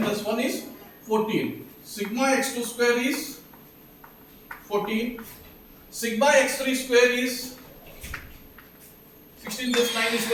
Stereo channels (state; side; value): identical; both; correlation 1.00